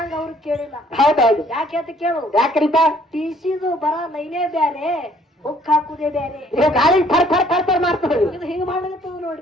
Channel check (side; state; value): both; normal; correlation 0.61